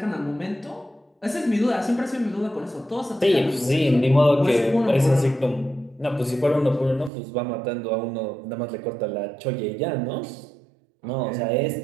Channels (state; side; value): drops out; left; at 7.1 s